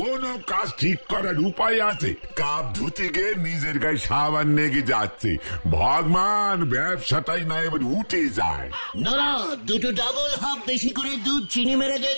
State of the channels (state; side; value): inverted; both; correlation -1.00